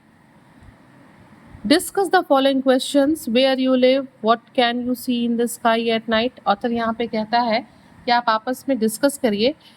Discuss the following questions. Where you live, what can you see in the sky at night? Author यहाँ पे कहता है कि आप आपस में discuss करिए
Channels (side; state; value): both; identical; correlation 1.00